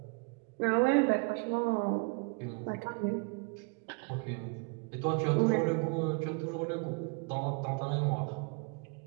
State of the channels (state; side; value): quieter; left; 33.1 dB